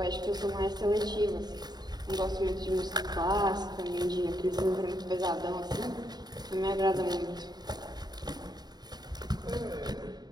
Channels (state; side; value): late; left; 0.20 ms